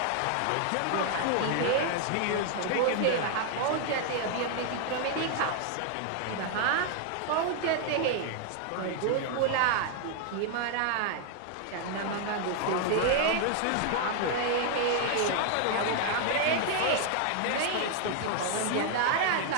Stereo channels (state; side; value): different; both; correlation 0.00